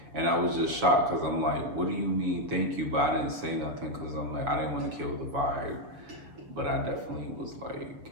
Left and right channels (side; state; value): left; late; 7.0 ms